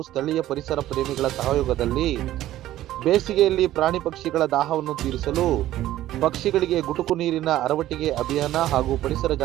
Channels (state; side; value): quieter; left; 14.0 dB